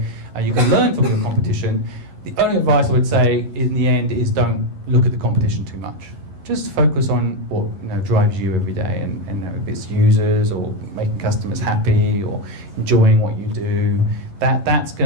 you can learn from your competition. The only advice I would say in the end is don't look at the competition too much. Just focus on what drives you every day, and if it's users or making customers happy or enjoying what you do. That's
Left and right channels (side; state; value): left; late; 11 ms